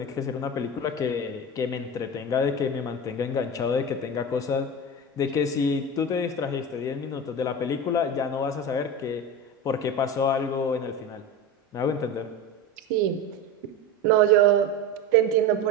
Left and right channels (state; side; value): normal; both; correlation 0.25